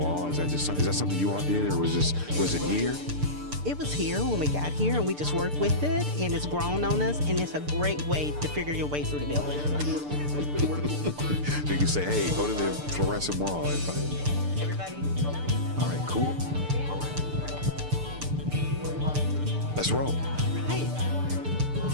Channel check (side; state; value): left; late; 6.8 ms